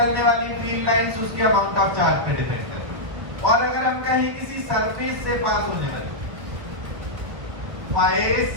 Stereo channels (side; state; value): left; late; 1.3 ms